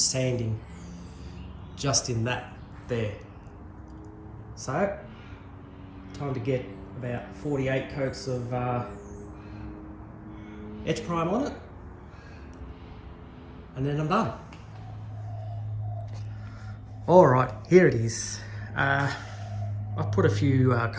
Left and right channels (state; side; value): identical; both; correlation 1.00